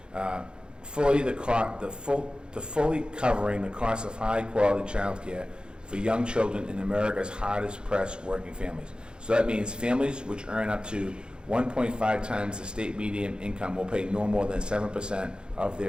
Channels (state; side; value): late; left; 0.050 ms